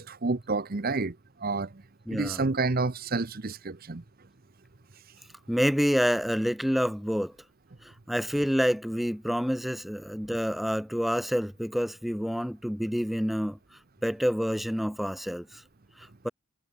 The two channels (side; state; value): both; normal; correlation 0.85